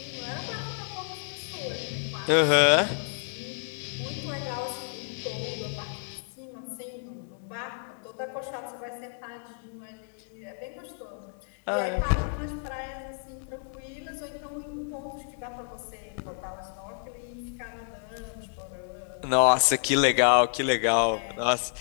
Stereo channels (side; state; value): right; silent; 58 dB below the other